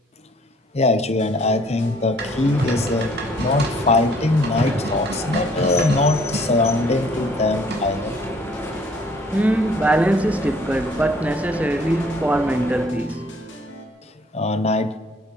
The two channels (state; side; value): normal; both; correlation 0.59